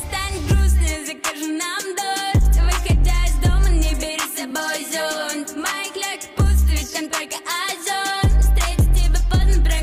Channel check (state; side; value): identical; both; correlation 1.00